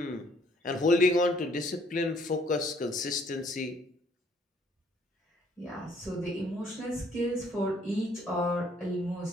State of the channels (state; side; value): normal; both; correlation 0.63